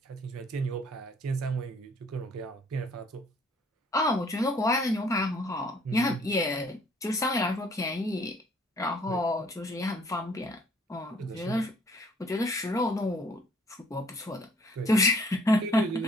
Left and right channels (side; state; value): both; normal; correlation 0.59